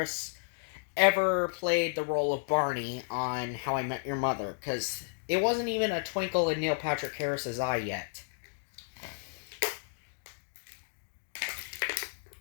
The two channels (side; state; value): right; silent; digital silence